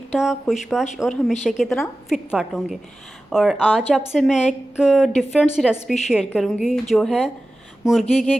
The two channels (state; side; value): normal; both; correlation 0.95